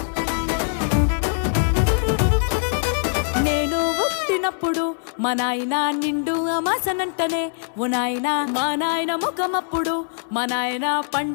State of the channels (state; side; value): silent; right; 64 dB below the other